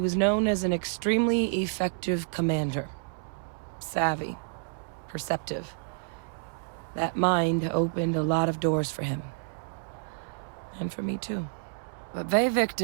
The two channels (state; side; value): silent; left; 58 dB below the other